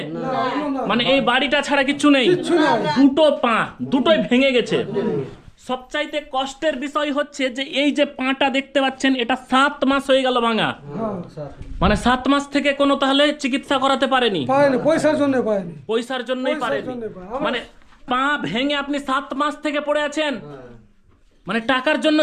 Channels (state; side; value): identical; both; correlation 1.00